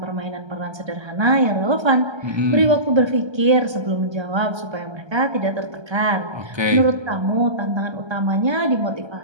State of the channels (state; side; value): late; left; 1.3 ms